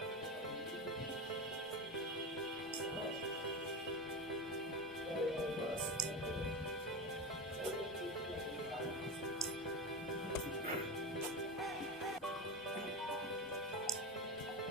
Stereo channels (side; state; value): both; normal; correlation 0.20